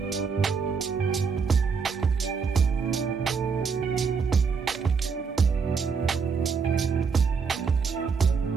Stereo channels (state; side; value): quieter; left; 5.6 dB